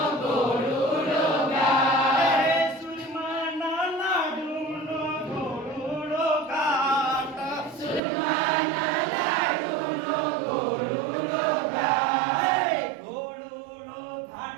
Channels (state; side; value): drops out; left; at 8.0 s